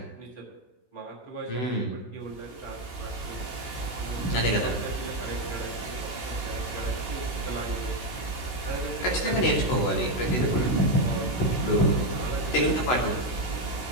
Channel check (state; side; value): late; right; 16 ms